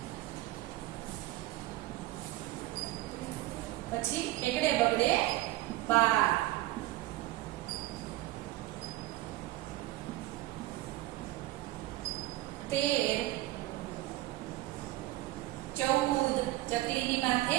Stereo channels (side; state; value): left; quieter; 17.4 dB